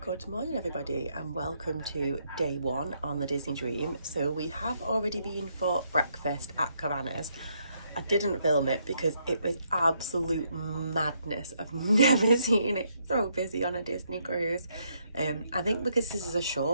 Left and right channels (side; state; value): both; inverted; correlation -0.74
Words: Good morning everybody and welcome to day one on the Disney Dream. So we have already been for breakfast at Cabanas. I didn't film it because it was absolute madness. I've never seen it so busy on a Disney cruise. I think because this is a